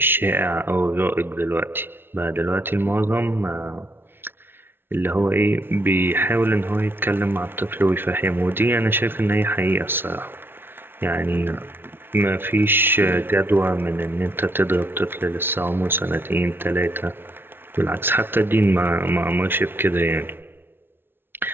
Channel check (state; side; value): late; left; 0.11 ms